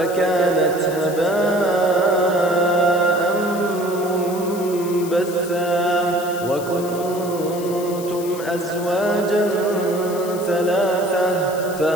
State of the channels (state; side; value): noise; left; hiss, 14 dB below the sound